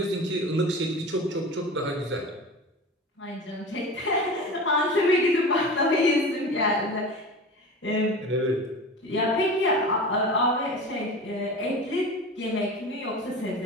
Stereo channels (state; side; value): normal; both; correlation 0.32